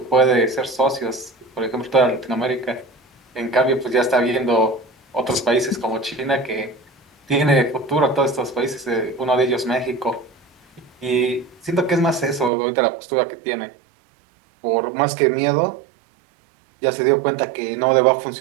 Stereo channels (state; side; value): drops out; left; at 12.5 s